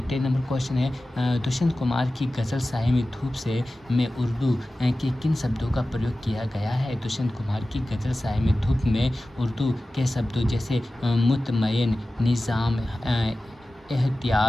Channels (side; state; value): both; normal; correlation 0.95